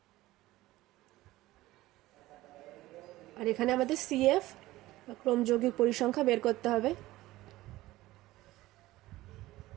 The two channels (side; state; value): left; quieter; 17.3 dB